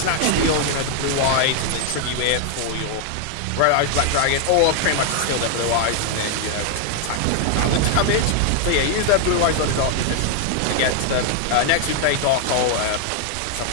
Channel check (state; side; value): different; both; correlation 0.00